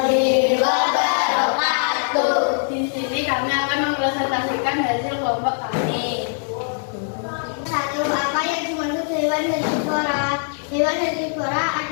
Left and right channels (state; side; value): silent; right; 65 dB below the other